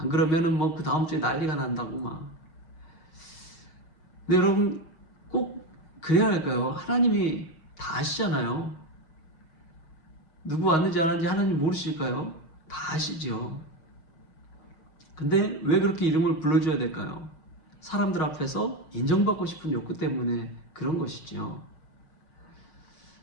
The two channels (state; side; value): late; right; 6.4 ms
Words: 그러면은 뭐 그 다음 주에 난리가 난다고 막. 근데 여러분, 꼭 그래야 할까요? 하나님이 다 아시잖아요. 누구 왔는지 안 왔는지 하나님 모르실까요? 다 아시죠. 근데 왜 그렇게 이름을 불러줘야 될까요? 사람들 앞에서 인정받고 싶은 욕구 때문에 그런 것이죠.